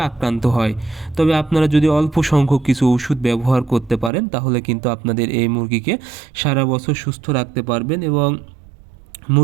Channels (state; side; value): drops out; left; at 4.1 s